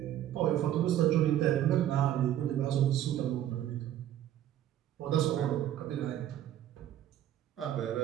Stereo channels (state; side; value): quieter; left; 11.7 dB